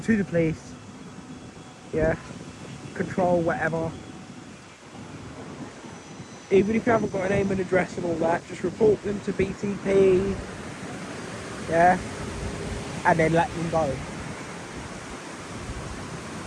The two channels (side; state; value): both; identical; correlation 1.00